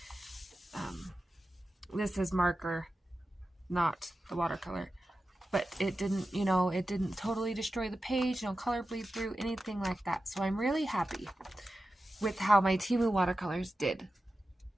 this is marker, not the watercolor, but it didn't, it didn't totally destroy the page, no color bleed through, anything like that. So I'm really happy with how my Temu watercolors did.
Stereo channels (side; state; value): both; normal; correlation 0.92